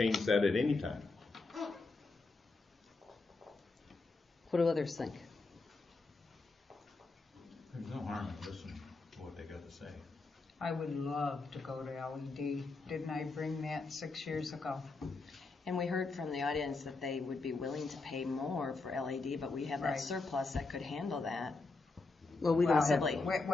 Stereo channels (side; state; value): right; quieter; 3.7 dB